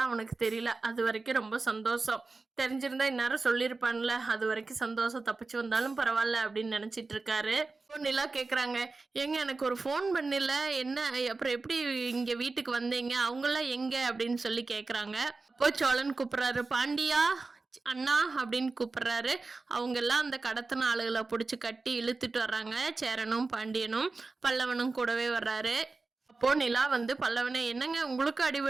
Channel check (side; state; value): left; quieter; 3.8 dB